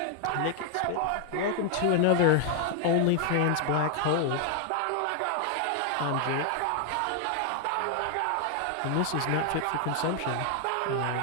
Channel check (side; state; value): both; different; correlation 0.00